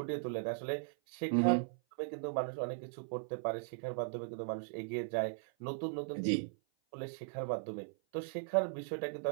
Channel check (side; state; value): left; silent; 52 dB below the other